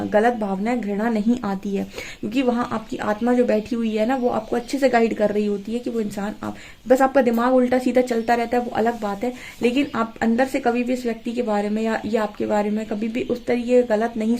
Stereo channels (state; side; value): identical; both; correlation 1.00